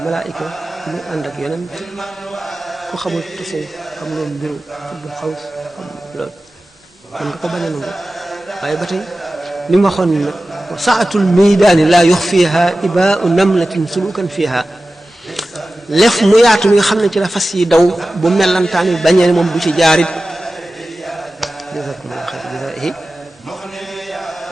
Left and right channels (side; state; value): both; normal; correlation 0.95